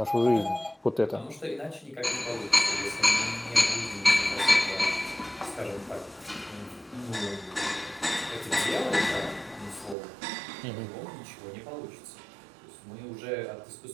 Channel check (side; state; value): left; drops out; at 10.0 s